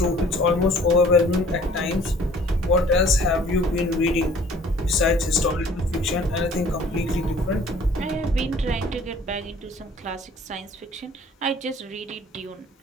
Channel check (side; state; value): both; normal; correlation 0.53